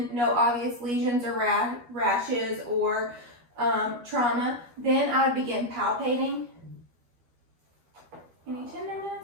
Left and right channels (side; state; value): left; late; 12 ms